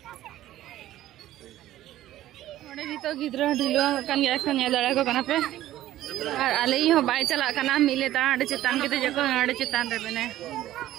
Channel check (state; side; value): quieter; left; 14.0 dB